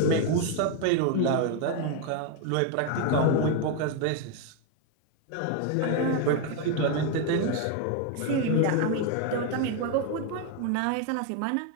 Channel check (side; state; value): both; different; correlation 0.01